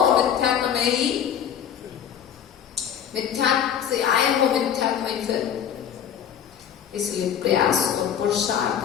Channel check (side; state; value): right; quieter; 8.9 dB